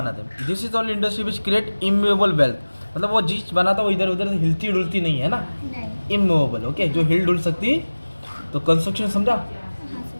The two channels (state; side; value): inverted; both; correlation -1.00